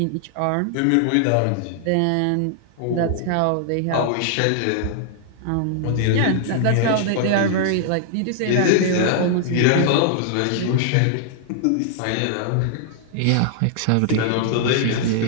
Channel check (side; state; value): both; different; correlation -0.01